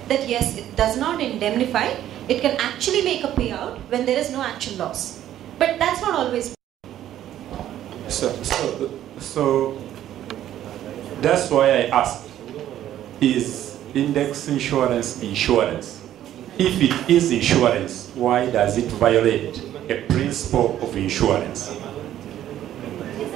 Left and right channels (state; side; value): quieter; left; 12.0 dB